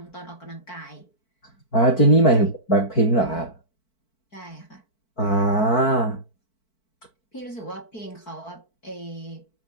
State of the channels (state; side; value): late; right; 4.5 ms